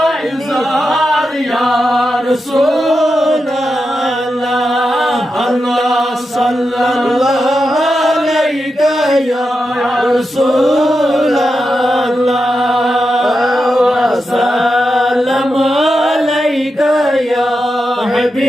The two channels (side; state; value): both; normal; correlation 0.88